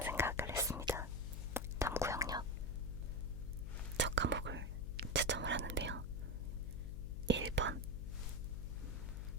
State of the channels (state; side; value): noise; left; hum, 5 dB below the sound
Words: 생각을 했습니다. 탐구 영역 첫 과목을 채점을 하는데요. 1번,